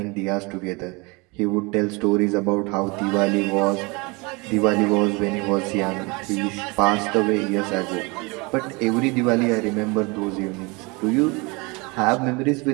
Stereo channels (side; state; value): left; quieter; 27.5 dB